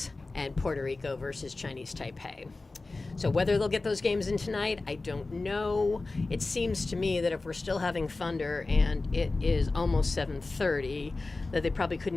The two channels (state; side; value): quieter; right; 3.4 dB